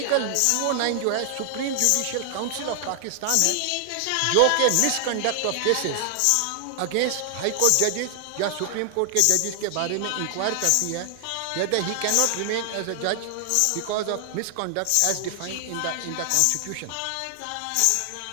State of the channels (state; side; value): different; both; correlation 0.00